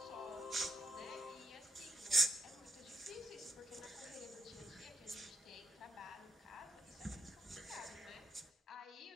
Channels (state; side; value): normal; both; correlation 0.77